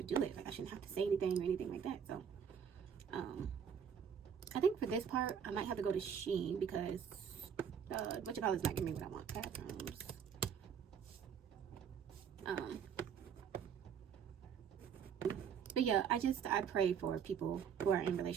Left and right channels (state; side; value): quieter; left; 7.5 dB